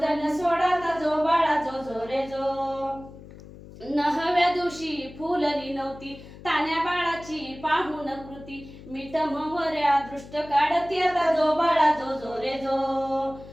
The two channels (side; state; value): left; noise; hum, 17 dB below the sound